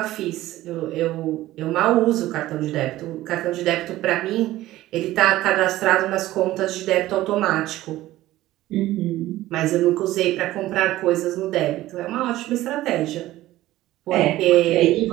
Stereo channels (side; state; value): left; quieter; 15.8 dB